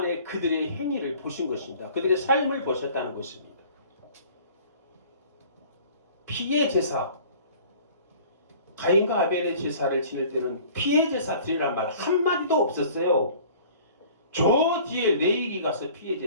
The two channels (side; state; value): both; inverted; correlation -0.49